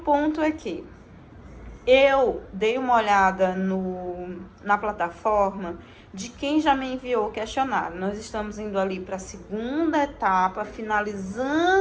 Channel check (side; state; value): both; identical; correlation 1.00